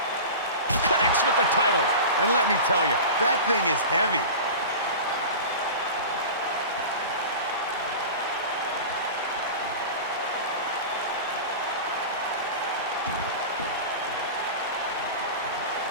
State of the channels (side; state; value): both; inverted; correlation -0.31